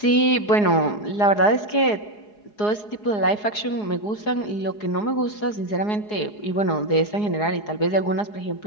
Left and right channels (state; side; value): late; right; 4.8 ms